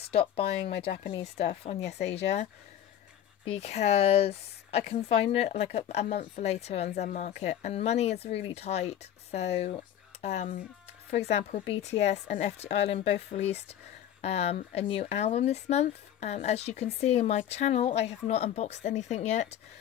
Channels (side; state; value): right; quieter; 10.7 dB